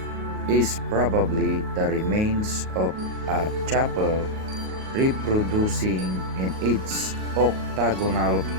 Is probably the remains of a chapel reproducing in its octagonal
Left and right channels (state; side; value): late; left; 38 ms